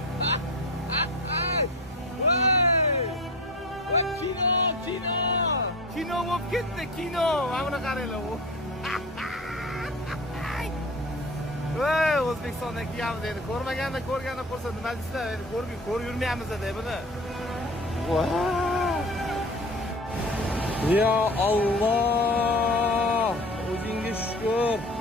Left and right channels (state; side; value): normal; both; correlation 0.35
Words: Voy! Voy, kino bo'lib ketdi, kino. Mana buni qaranglar. Voy, O'zbekistondan kelyapmiz endi. Ko'rmaganda ko'rganda qolsa nima deysizlar? Endi ko'rib yurmayapmiz-da buni. Wow! Ya Allah! O'zingga shukr.